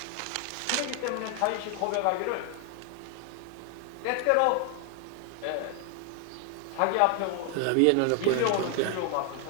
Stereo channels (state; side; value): different; both; correlation 0.00